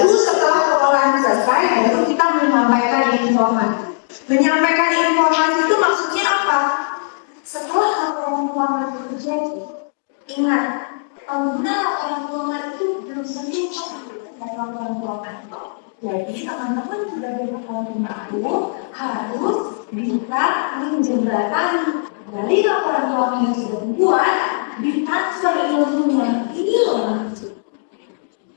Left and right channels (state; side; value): silent; right; digital silence